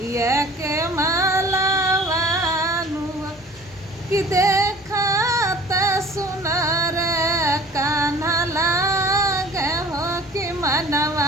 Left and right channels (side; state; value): both; normal; correlation 0.46